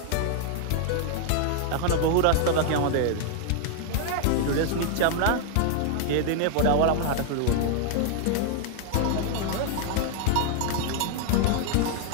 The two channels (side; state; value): both; different; correlation 0.00